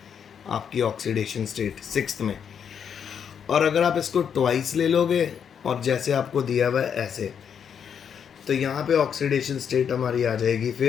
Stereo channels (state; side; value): quieter; right; 7.7 dB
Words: आपकी ऑक्सीडेशन स्टेट 6th में। और अगर आप इसको ट्वाइस ले लोगे और जैसे आपको दिया हुआ है ऐसे, तो यहाँ पे ऑक्सीडेशन स्टेट हमारी आ जाएगी,